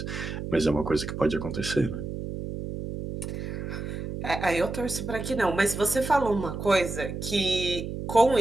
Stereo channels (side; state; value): right; noise; hum, 6 dB below the sound